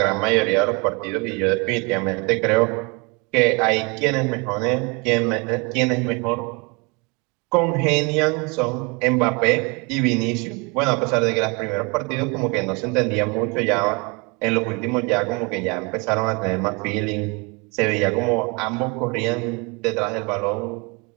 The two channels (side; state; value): left; quieter; 29.9 dB